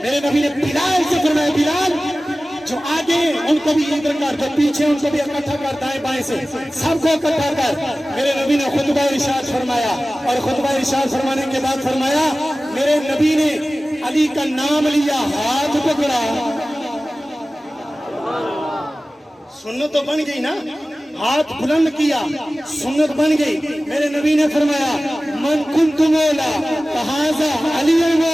میرے نبی نے بلال سے فرمایا، بلال جو آگے ان کو بھی ادھر کر، جو پیچھے ان کو بھی اکٹھا کر، دائیں بائیں سے سب کو اکٹھا کر۔ میرے نبی نے خطبہ ارشاد فرمایا، اور خطبہ ارشاد فرمانے کے بعد فرمایا میرے نبی نے علی کا نام لیا، ہاتھ پکڑا۔ سنت تو بن گئی نا، ہاتھ بلند کیا، سنت بن گئی۔ میرے نبی نے فرمایا من کنت مولا فہذا علی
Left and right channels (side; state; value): both; normal; correlation 0.96